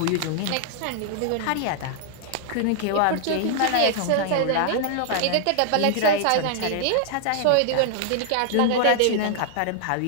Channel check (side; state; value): both; different; correlation 0.00